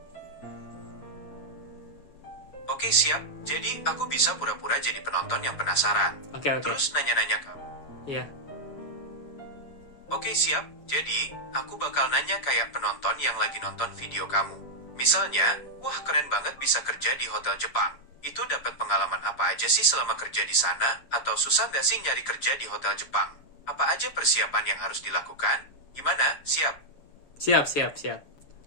Oke siap, jadi aku bisa pura-pura jadi penonton yang penasaran. Oke. Terus nanya-nanya kamu. Iya. Oke siap, jadi aku bakal nanya kayak penonton yang lagi nonton video kamu. Misalnya, wah keren banget bisa kerja di Hotel Jepang. Itu dapat pengalaman apa aja sih selama kerja di sana? Atau susah gak sih nyari kerja di Hotel Jepang? Apa aja persiapan yang harus dilakukan? Gimana? Siap? Siap.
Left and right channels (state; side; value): late; right; 7.0 ms